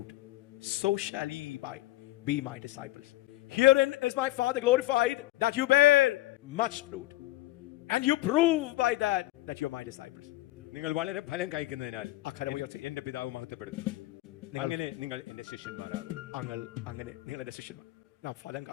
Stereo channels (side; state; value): right; quieter; 17.3 dB